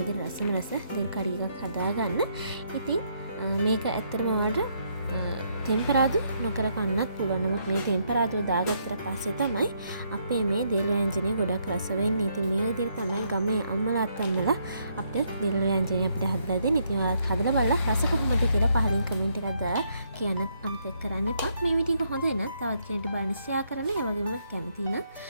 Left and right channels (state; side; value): inverted; both; correlation -0.73